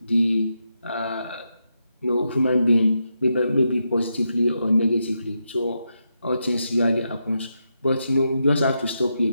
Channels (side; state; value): both; inverted; correlation -0.85